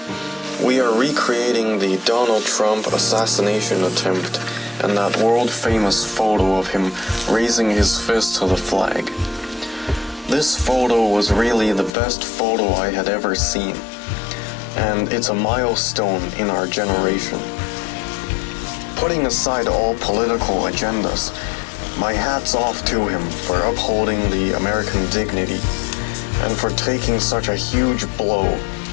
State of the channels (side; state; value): right; drops out; at 11.9 s